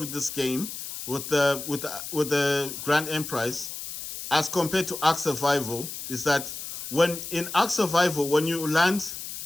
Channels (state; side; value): noise; left; hiss, 8 dB below the sound